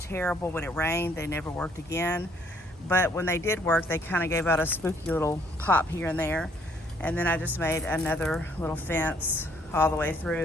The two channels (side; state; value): both; normal; correlation 0.65